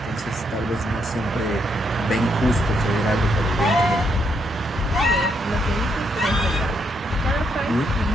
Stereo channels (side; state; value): both; normal; correlation 0.76